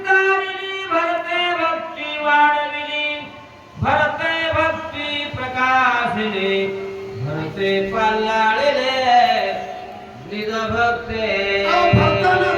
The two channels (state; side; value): identical; both; correlation 1.00